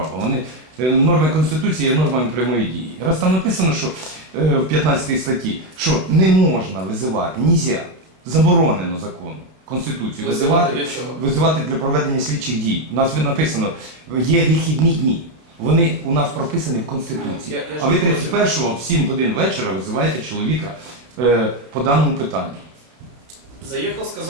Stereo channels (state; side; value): late; left; 31 ms